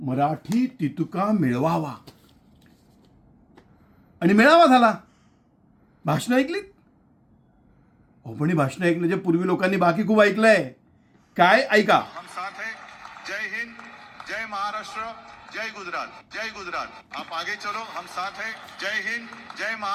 तितुका मिळवावा आणि मिळावा झाला. भाषण ऐकलीत? हो, पण ही भाषण ऐकण्याच्या पूर्वी लोकांनी बाकी खूप ऐकलंय. काय ऐका. हम साथ हैं. जय हिंद, जय महाराष्ट्र, जय गुजरात, जय गुजरात. आप आगे चलो, हम साथ हैं. जय हिंद, जय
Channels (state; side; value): identical; both; correlation 1.00